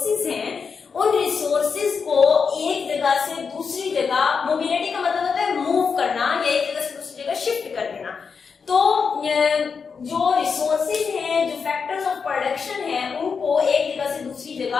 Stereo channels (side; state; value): right; quieter; 5.6 dB